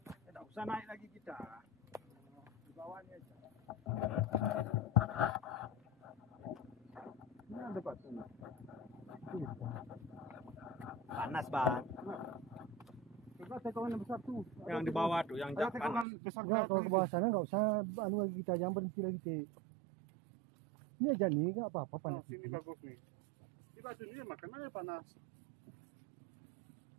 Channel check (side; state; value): left; drops out; at 16.1 s